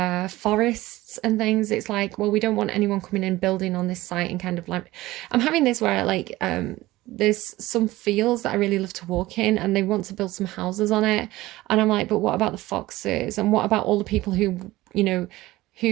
forests and things. It's like, well, we don't want anyone coming in building on this site, and kind of like, I'm having this where like there's some fields that I really love to walk in, and they want to build some houses on it, and I'm like, but what about the foxes, and what about all the people who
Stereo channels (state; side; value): quieter; left; 17.9 dB